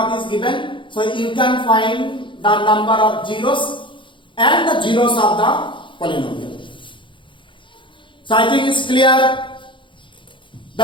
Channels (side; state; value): right; late; 0.24 ms